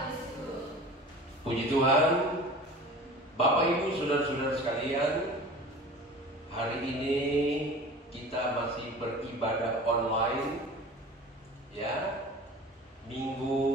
Puji Tuhan. Bapak Ibu, saudara-saudara sekalian, hari ini kita masih beribadah online, ya.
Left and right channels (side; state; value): both; normal; correlation 0.39